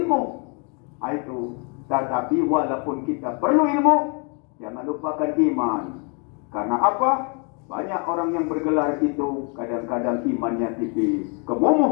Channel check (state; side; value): quieter; right; 36.7 dB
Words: Itu. Tetapi walaupun kita perlu ilmu, jangan lupakan iman. Karena apa? Banyak orang yang bergelar itu kadang-kadang imannya tipis.